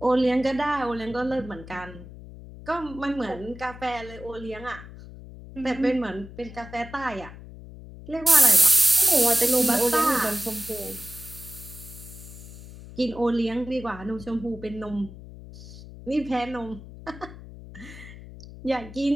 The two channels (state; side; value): noise; left; hum, 15 dB below the sound